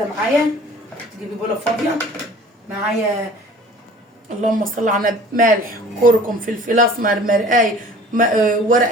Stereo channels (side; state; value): both; normal; correlation 0.47